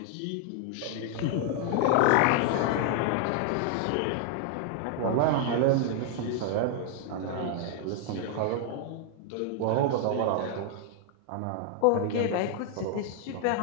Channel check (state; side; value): different; both; correlation 0.00